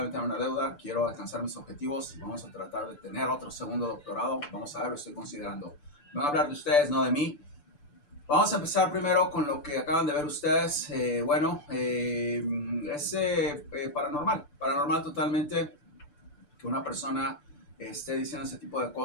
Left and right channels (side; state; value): right; late; 6.8 ms